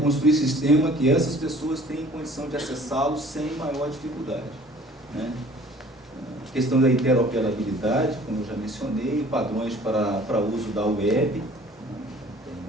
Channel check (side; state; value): both; normal; correlation 0.51